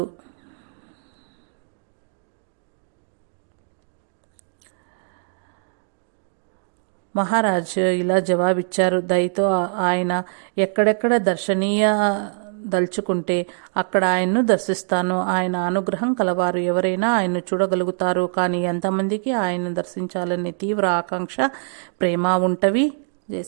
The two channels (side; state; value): left; silent; digital silence